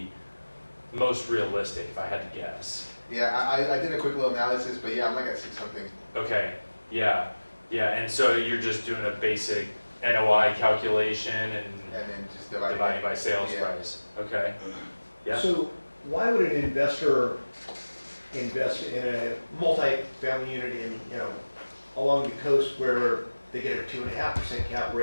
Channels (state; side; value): inverted; both; correlation -1.00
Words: most realistic if I had to guess. Yeah, I did a quick little analysis, but yeah, I'm like at 6 something. Okay, yeah, and so you're just doing a basic NOI calculation and then just dividing by sales price. Okay, yeah. So why would an investor invest in a multi-family unit in, along the coast where they get a 2.5% cap